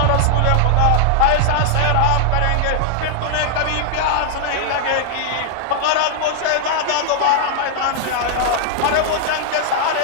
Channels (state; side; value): different; both; correlation 0.00